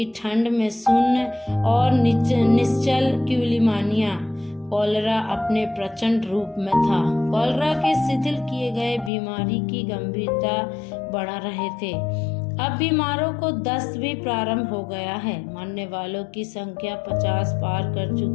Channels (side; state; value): right; drops out; at 9.1 s